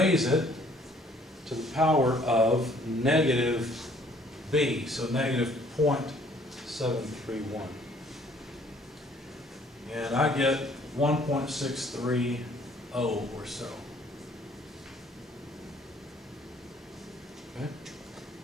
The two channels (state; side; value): normal; both; correlation 0.60